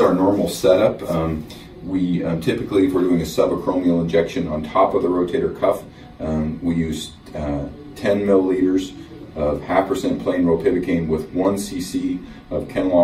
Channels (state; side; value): identical; both; correlation 1.00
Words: normal setup. We typically, if we're doing a subacromial injection on top of the rotator cuff, we use 10 milliliters of 0.5% plain ropivacaine with 1 cc of